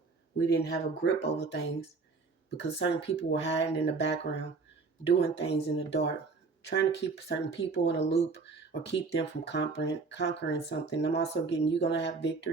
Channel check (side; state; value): left; quieter; 4.3 dB